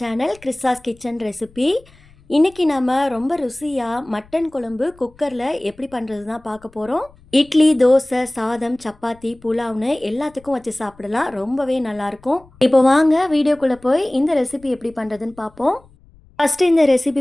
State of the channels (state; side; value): noise; left; rumble, 27 dB below the sound